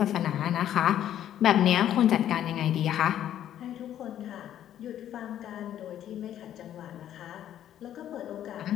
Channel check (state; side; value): quieter; right; 11.1 dB